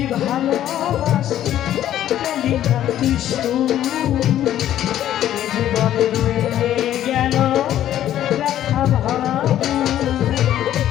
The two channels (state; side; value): quieter; right; 11.9 dB